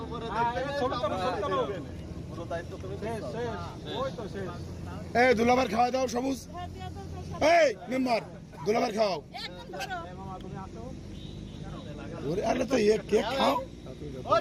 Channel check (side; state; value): both; identical; correlation 1.00